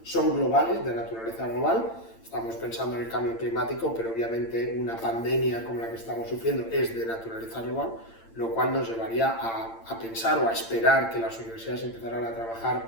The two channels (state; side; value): late; right; 8.8 ms